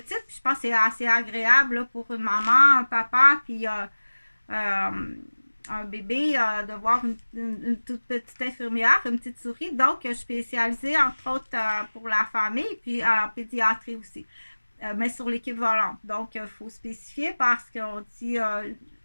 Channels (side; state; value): both; inverted; correlation -1.00